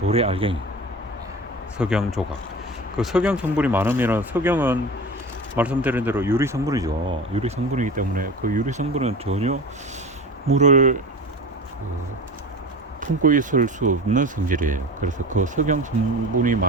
알갱이, 석영 조각, 그 석영 성분이 많으면, 석영은 말씀드린 대로 유리 성분이죠. 유리 성분이기 때문에 그 유리 성분은 전혀 물을 품고 있을 수 없는 성질이에요. 그래서 그 석영 성분이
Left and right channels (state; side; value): normal; both; correlation 0.32